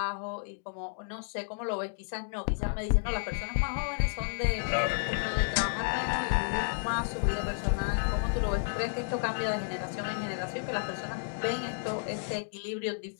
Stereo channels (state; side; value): silent; right; digital silence